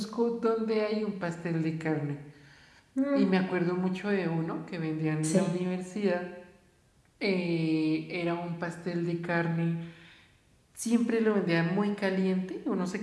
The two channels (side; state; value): both; identical; correlation 1.00